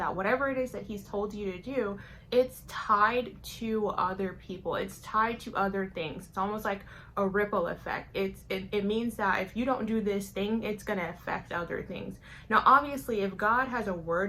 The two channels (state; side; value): identical; both; correlation 1.00